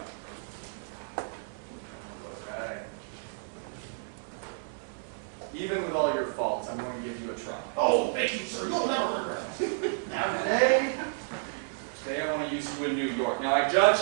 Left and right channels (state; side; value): silent; left; digital silence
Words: Okay. Even with all your faults, I'm going to give you a try. Oh, thank you, sir. You'll never regret it. Now today I want to use you in New York. Now I